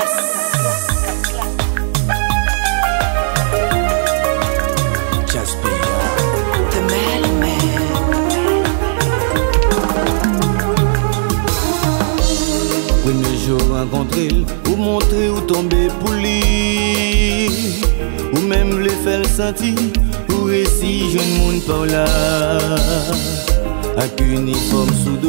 Jasper, The Mailman. Premier jour rencontré, ou montrer ou tomber pour lui, ou même le faire sentir, ou récit jeune monde par là. Avec uniforme sous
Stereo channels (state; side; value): silent; left; digital silence